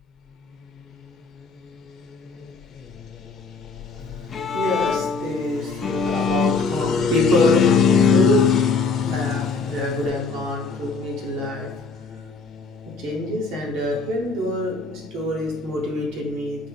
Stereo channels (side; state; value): right; quieter; 4.2 dB